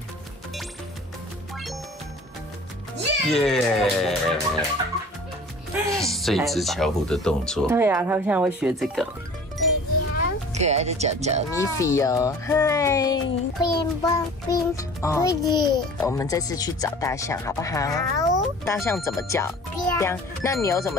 耶！这一只巧虎的动作。对啊，他现在会学这个。可爱的脚脚，米菲哦，嗨！我们这次去找大象，好不好？好。大象怎么叫？羊。那牛怎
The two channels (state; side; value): normal; both; correlation 0.44